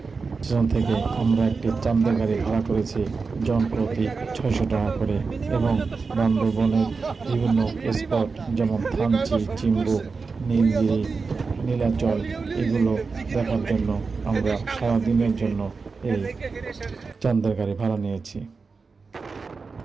স্টেশন থেকে আমরা একটি চাঁদের গাড়ি ভাড়া করেছি জন প্রতি 600 টাকা করে, এবং বান্দরবনের বিভিন্ন স্পট যেমন থানচি, চিম্বুক, নীলগিরি, নীলাচল এগুলো দেখার জন্য আমরা সারাদিনের জন্য এই চাঁদের গাড়ি ভাড়া নিয়েছি।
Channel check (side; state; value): left; quieter; 4.6 dB